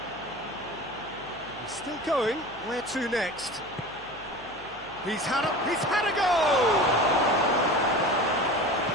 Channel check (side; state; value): left; noise; hum, 23 dB below the sound